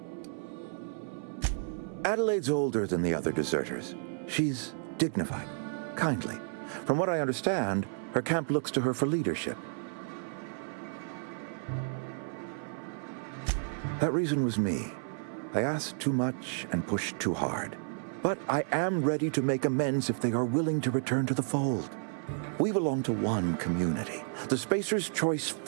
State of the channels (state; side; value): silent; left; 57 dB below the other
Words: Adelaide's older than the other deserters. She's dignified, kindly. From what I understand, her camp looks to her for leadership. That reason was me. I asked too much and pushed too hard. But I am ready to make amends if they are willing to return to the fold. We belong to one community, the Spacer's Choice